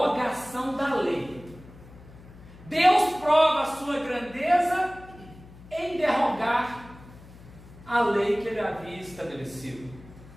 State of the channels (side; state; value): left; noise; hum, 20 dB below the sound